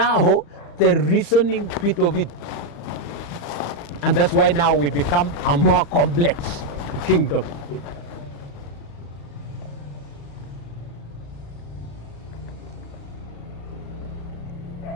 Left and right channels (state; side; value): late; right; 35 ms